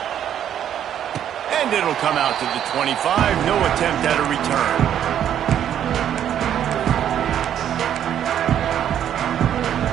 And it'll come out to the 25. No attempt at a return.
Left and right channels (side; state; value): left; quieter; 10.0 dB